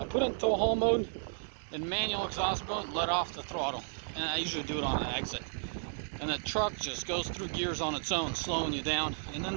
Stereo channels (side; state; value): left; silent; 56 dB below the other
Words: put it in tow haul mode and manual exhaust mode, let off the throttle, and I usually do it on an exit. And the truck just goes through gears on its own, slowing you down. And